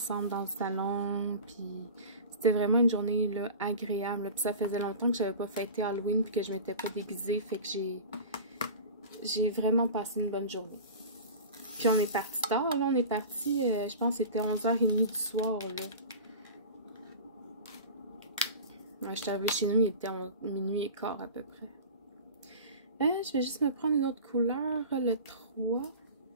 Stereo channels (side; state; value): both; inverted; correlation -0.34